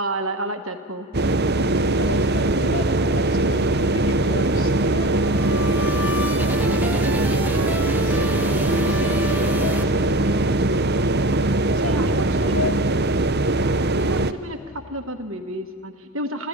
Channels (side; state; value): both; normal; correlation 0.33